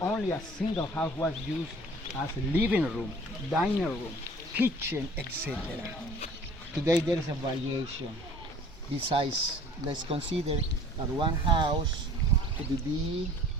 only a single house was used as a living room, dining room, kitchen, etc. Today there is a variation. Besides, let's consider that one house could be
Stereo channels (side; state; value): both; normal; correlation 0.49